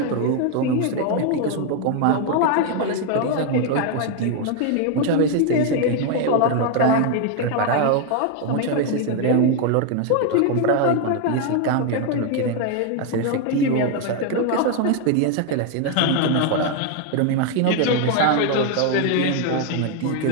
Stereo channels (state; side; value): different; both; correlation 0.01